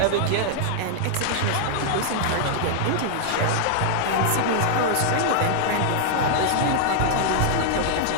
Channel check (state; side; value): different; both; correlation -0.01